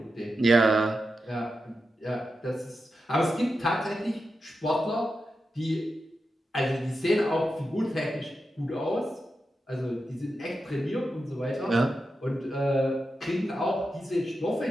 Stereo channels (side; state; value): both; normal; correlation 0.89